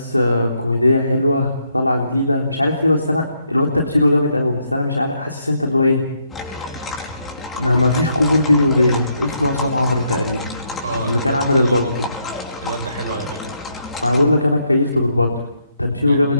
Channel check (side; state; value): both; inverted; correlation -0.76